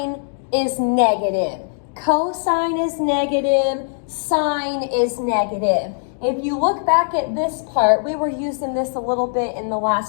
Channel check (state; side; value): silent; right; digital silence